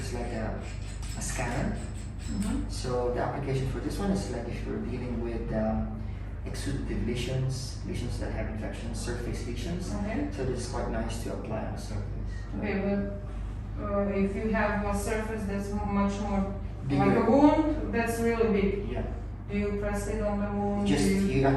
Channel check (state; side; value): identical; both; correlation 1.00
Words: is like a scanner. So the application for this one is like if you're dealing with exudative lesions that have infections, surface lesions. Okay. So this is quite nice to apply on the surface. Okay, but if you have a surface that's much more Bigger. like a wound, that's really big. Yeah. Do you press it on the wound? You